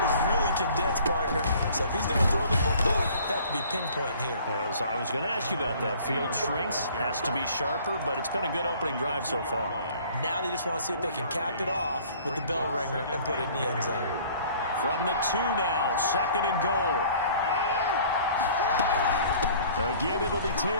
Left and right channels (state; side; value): inverted; both; correlation -0.52